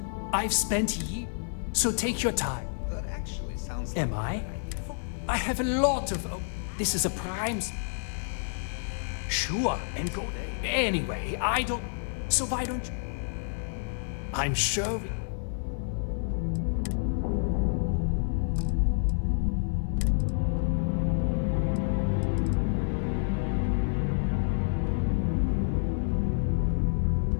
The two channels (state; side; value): silent; right; 59 dB below the other